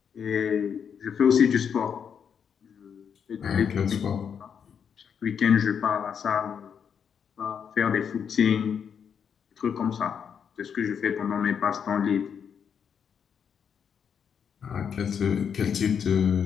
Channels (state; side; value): quieter; right; 7.4 dB